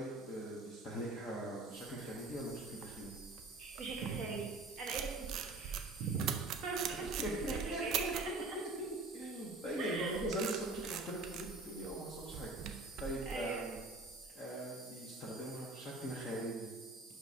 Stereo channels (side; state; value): left; quieter; 3.0 dB